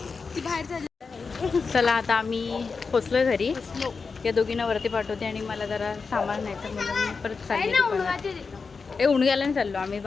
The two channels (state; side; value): quieter; right; 4.8 dB